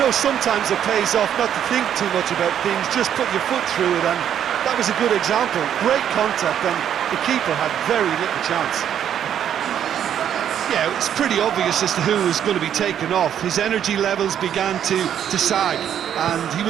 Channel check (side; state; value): left; quieter; 9.5 dB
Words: sometimes it pays off not to think too much about things, just put your foot through it, and that was a good example. Great contact, and the keeper had very little chance. Yeah, it's pretty obvious as to who was going to be taken off. His energy levels began to sag, and he